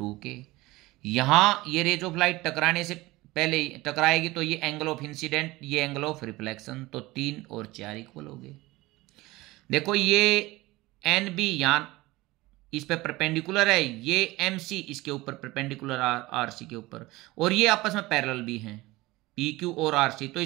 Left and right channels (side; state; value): left; quieter; 20.1 dB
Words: के। यहाँ ये रेज ऑफ लाइट टकराने से पहले टकराएगी तो ये एंगल ऑफ इंसिडेंट, ये एंगल ऑफ रिफ्लेक्शन, तो 3 और 4 इक्वल हो गए। देखो ये एन बी यहाँ इस पे परपेंडिकुलर है, ये एम सी इसके ऊपर परपेंडिकुलर आर सी के ऊपर, और ये आपस में पैरेलल भी हैं पी क्यू और आर सी। तो